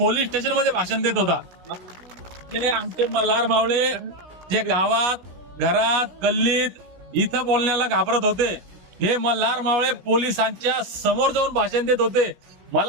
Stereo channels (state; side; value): late; left; 17 ms